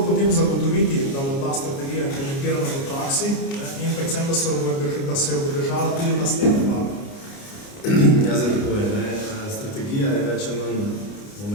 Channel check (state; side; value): late; right; 29 ms